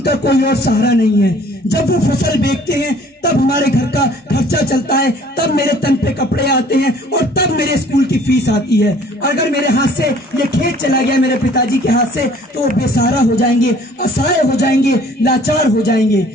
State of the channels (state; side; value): normal; both; correlation 0.54